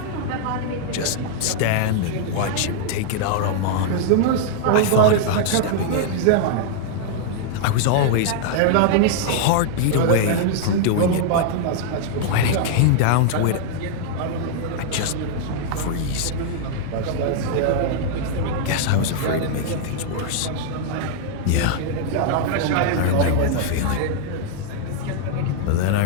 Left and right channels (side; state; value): both; different; correlation -0.01